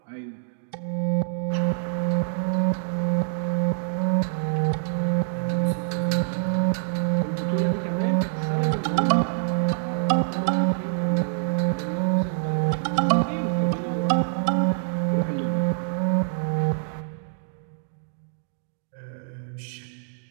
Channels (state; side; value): silent; left; digital silence